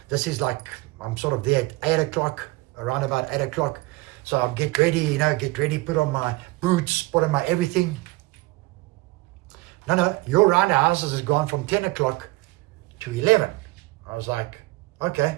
This is I'm sort of there at 8 o'clock, around about 8 o'clock. So I'm get ready, put on my boots, put on my everything. No, your round the houses has gone from 10 o'clock to 11. I was like,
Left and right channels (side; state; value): left; quieter; 21.5 dB